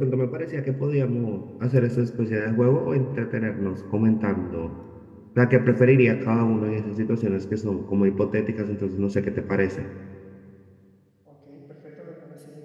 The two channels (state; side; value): identical; both; correlation 1.00